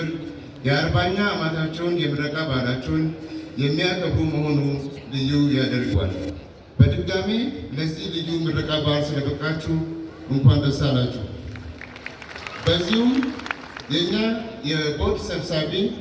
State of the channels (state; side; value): identical; both; correlation 1.00